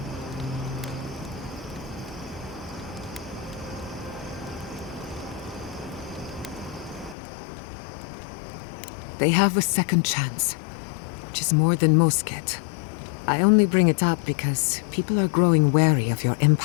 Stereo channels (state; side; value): drops out; right; at 7.2 s